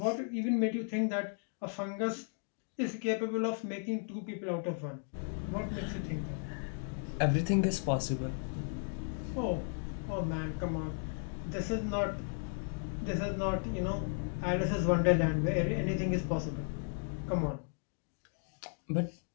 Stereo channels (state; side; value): silent; right; 54 dB below the other